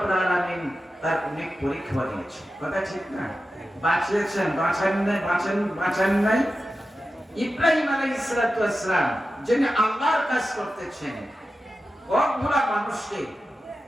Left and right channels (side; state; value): both; normal; correlation 0.92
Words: আলামিন তার অনেক পরীক্ষা দিয়েছেন। কথা ঠিক না? বাঁচিয়েছেন, বাঁচান নাই। ইব্রাহিম আলাইহিস সালাম যিনি আল্লাহর কাজ করতেছেন,